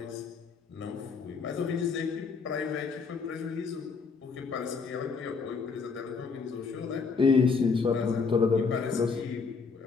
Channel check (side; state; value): right; quieter; 5.0 dB